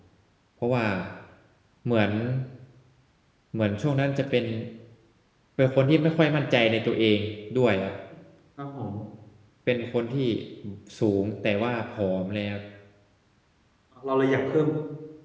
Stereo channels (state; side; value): identical; both; correlation 1.00